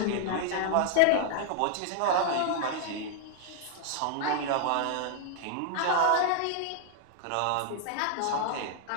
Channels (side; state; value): both; different; correlation 0.00